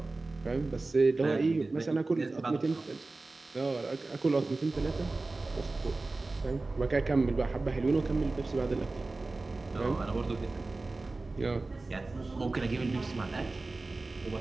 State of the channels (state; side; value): quieter; left; 3.3 dB